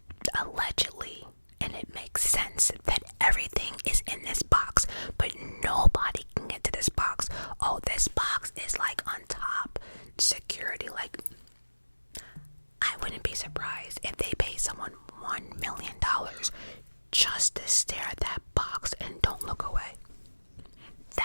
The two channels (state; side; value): inverted; both; correlation -1.00